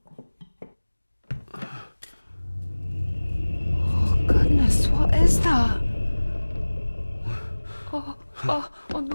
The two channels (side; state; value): both; inverted; correlation -1.00